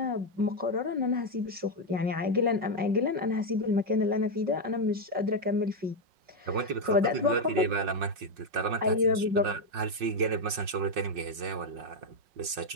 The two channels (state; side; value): late; left; 5.5 ms